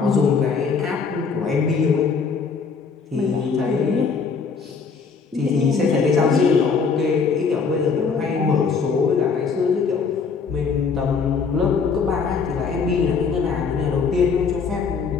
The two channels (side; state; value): right; quieter; 5.4 dB